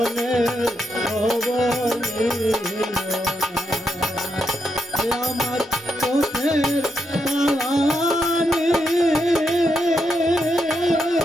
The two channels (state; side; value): normal; both; correlation 0.81